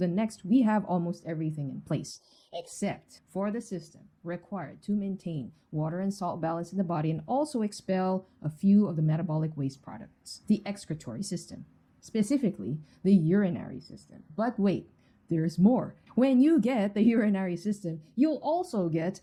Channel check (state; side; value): identical; both; correlation 1.00